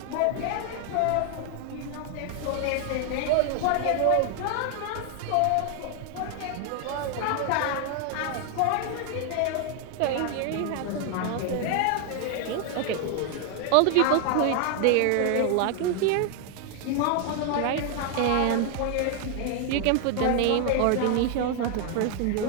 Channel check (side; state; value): both; different; correlation 0.00